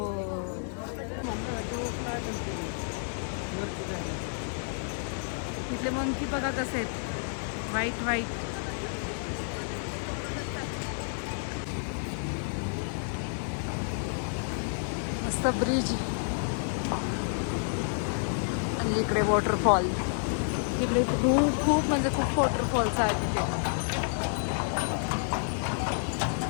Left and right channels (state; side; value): silent; right; 58 dB below the other